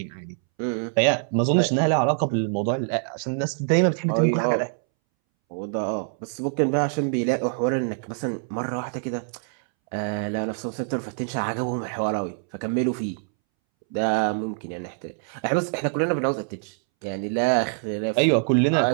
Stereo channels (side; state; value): left; silent; 62 dB below the other